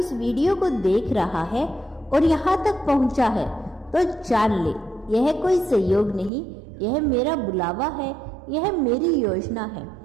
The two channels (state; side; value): drops out; left; at 6.3 s